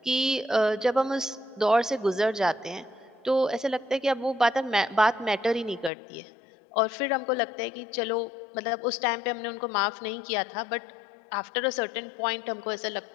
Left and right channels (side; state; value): right; drops out; at 5.9 s